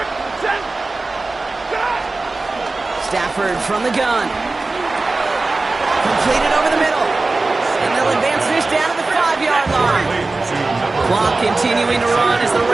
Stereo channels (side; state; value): left; quieter; 3.4 dB